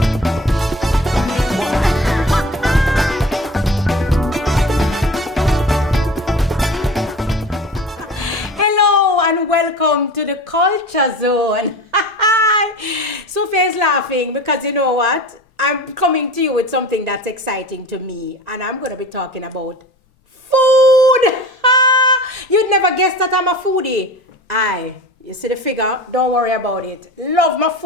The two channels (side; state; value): both; normal; correlation 0.36